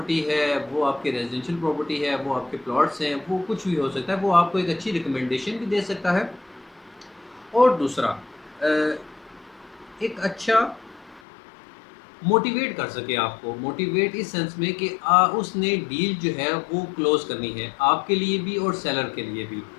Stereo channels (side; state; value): right; drops out; at 11.2 s